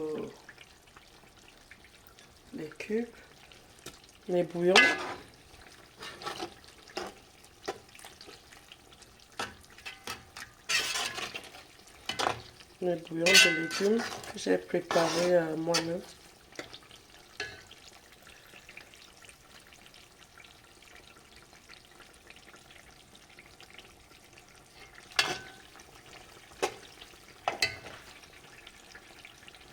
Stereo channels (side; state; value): both; identical; correlation 1.00